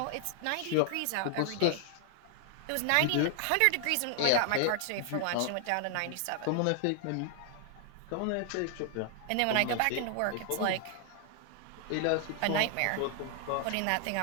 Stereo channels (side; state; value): both; different; correlation 0.00